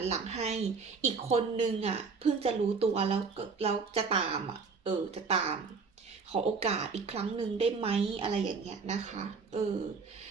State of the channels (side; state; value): left; quieter; 4.9 dB